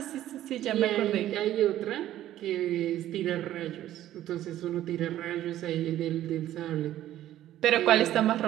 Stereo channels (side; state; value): left; quieter; 13.0 dB